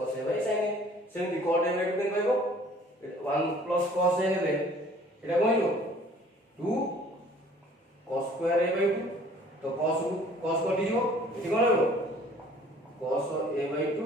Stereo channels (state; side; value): normal; both; correlation 0.53